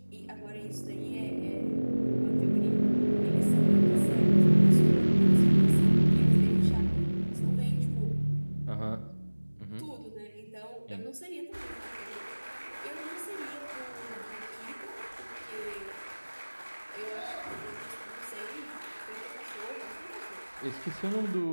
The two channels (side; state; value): both; inverted; correlation -1.00